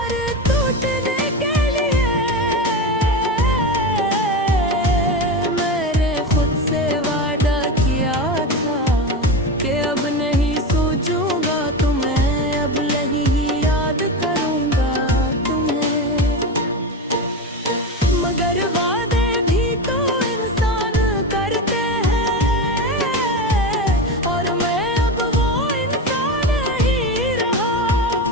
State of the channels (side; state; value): both; normal; correlation 0.21